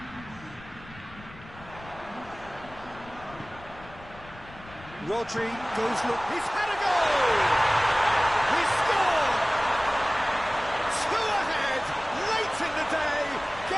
Rodri goes, look, he's had a goal! He's scored! Two ahead, late in the day,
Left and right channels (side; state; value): left; noise; rumble, 19 dB below the sound